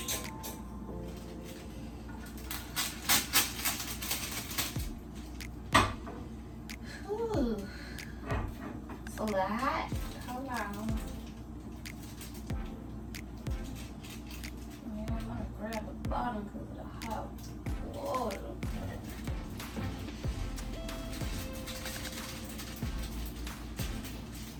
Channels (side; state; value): both; identical; correlation 1.00